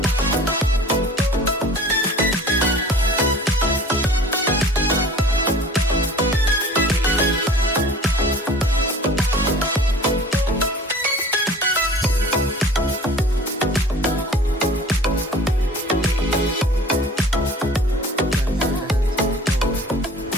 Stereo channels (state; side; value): normal; both; correlation 0.44